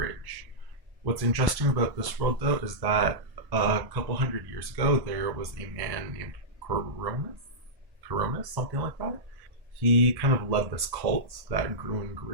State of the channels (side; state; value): left; late; 1.1 ms